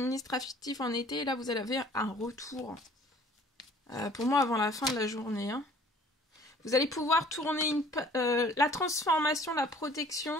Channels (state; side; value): normal; both; correlation 0.53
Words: en été et là vous avez un retour. Pour moi avant la fin de la journée. Hein. Vous allez pouvoir tourner la transformation, la protection.